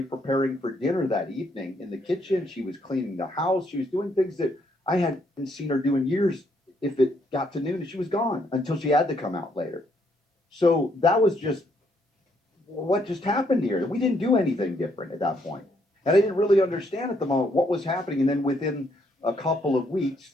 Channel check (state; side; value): normal; both; correlation 0.72